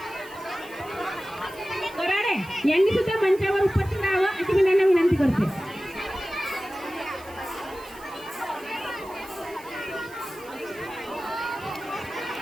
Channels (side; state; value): right; noise; hiss, 22 dB below the sound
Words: कराडे यांनी सुद्धा मंचावर उपस्थित राहावं अशी मी त्यांना विनंती करते.